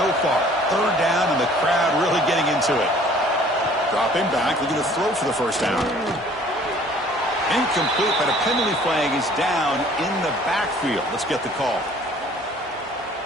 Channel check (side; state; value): both; normal; correlation 0.54